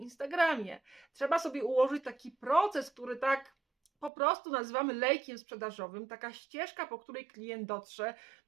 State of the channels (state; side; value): drops out; left; at 4.1 s